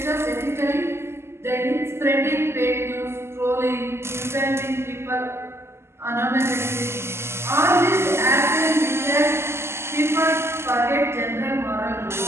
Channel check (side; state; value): left; late; 0.12 ms